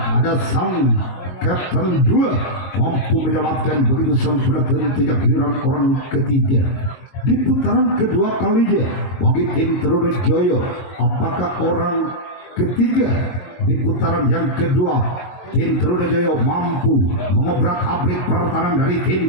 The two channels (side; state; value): right; late; 22 ms